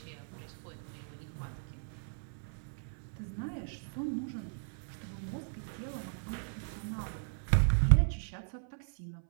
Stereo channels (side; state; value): left; silent; 53 dB below the other